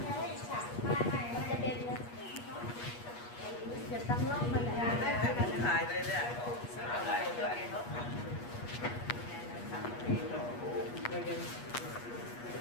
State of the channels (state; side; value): late; right; 8.3 ms